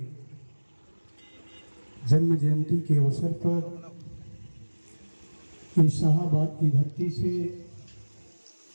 जन्म जयंती के अवसर पर इस शाहाबाद की धरती से,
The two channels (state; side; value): inverted; both; correlation -1.00